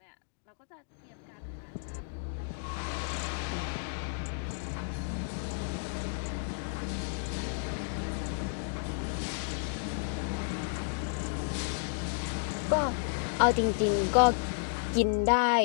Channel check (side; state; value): right; silent; digital silence